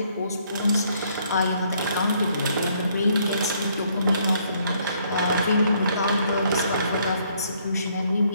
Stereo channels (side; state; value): both; inverted; correlation -0.67